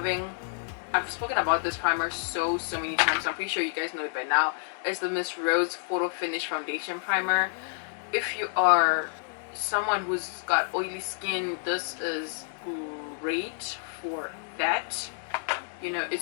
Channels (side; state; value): right; silent; digital silence